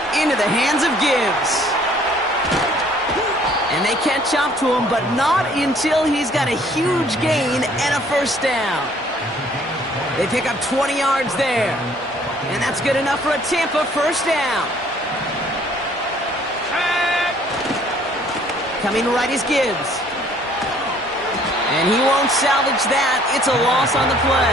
Into the hands of Gibbs. And they catch up to him, but not until he's got a huge gain and a first down. They pick up 20 yards there. And that's good enough for a Tampa first down. Coming right is Gibbs. And he won't salvage that. It's a loss on the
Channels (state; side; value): normal; both; correlation 0.59